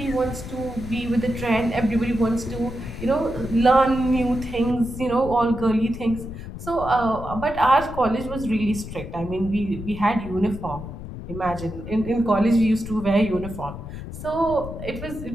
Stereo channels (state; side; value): noise; left; rumble, 10 dB below the sound